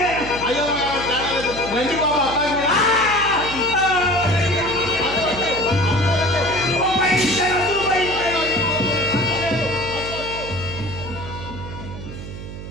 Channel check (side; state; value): right; noise; hum, 10 dB below the sound